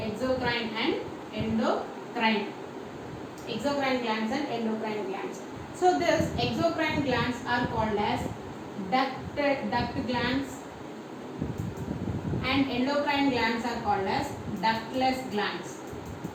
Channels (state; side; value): identical; both; correlation 1.00